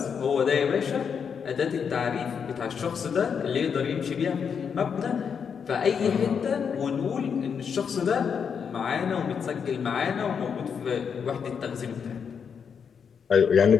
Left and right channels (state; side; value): quieter; right; 6.8 dB